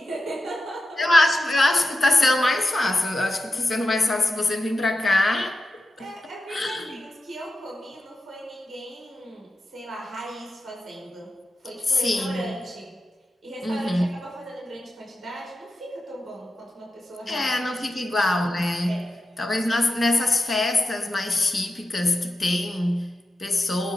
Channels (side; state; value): both; normal; correlation 0.91